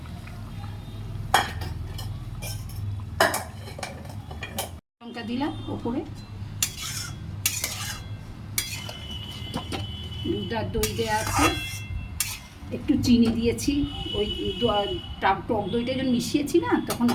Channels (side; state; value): both; identical; correlation 1.00